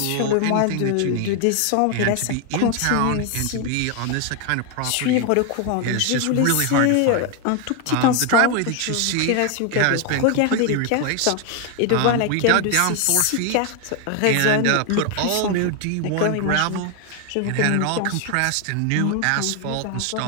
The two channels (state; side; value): different; both; correlation 0.01